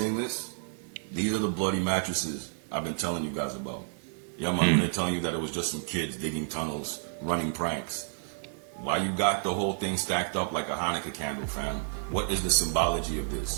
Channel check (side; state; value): left; silent; 57 dB below the other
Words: this? These are the bloody mattresses I've been telling you guys about. Yeah, man, they're telling you that it was just some kids digging tunnels, running pranks. Why you got the whole thing stacked up like a Hanukkah candle, fam? What is the symbology of